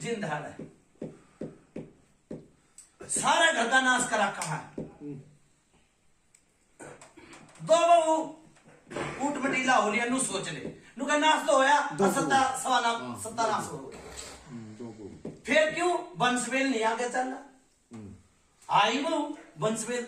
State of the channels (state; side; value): identical; both; correlation 1.00